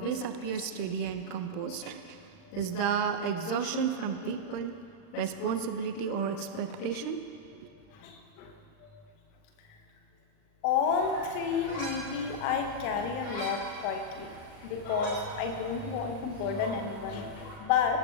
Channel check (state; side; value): late; right; 39 ms